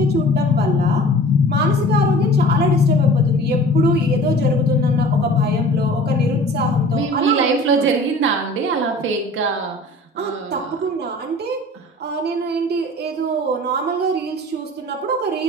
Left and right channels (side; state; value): both; normal; correlation 0.44